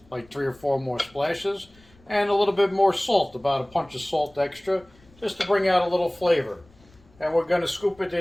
like 3 or 4 more splashes. And a little bit more salt, about a punch of salt extra, just to bring out a little flavor. And we're going to scoop it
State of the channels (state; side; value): noise; left; rumble, 29 dB below the sound